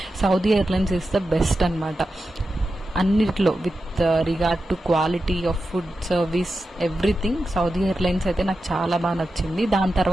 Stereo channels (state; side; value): normal; both; correlation 0.91